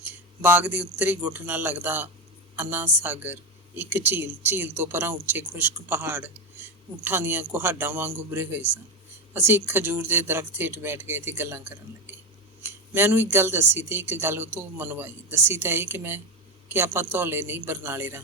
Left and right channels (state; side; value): normal; both; correlation 0.13